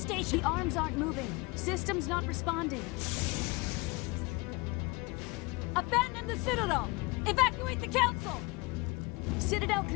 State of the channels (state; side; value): quieter; right; 25.8 dB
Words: The arms aren't moving. System's not responding. Abandon the Citadel! Evacuate the Council! Citadel